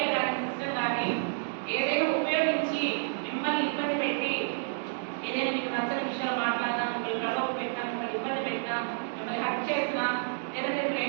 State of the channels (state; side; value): silent; left; digital silence